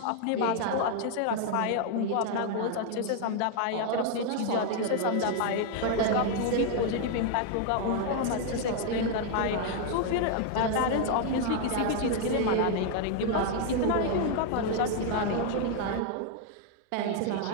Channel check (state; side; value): different; both; correlation 0.00